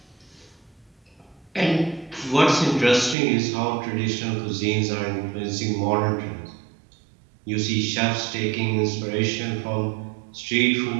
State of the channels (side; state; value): left; drops out; at 3.2 s